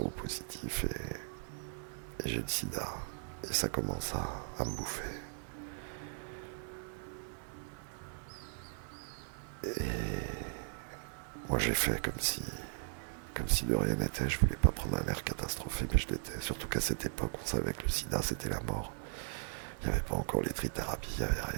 et j'ai le sida. Et ça commence à me bouffer. Et moi j'ai fait comme si de rien n'était. Je voulais pas prendre un air catastrophé, mais je l'étais. Surtout qu'à cette époque, on savait que le sida c'était la mort. Il n'y avait pas encore les trithérapies, il n'y avait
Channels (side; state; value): left; silent; digital silence